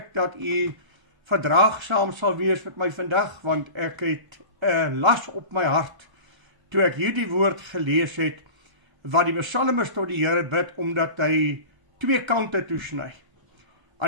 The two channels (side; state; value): left; late; 1.4 ms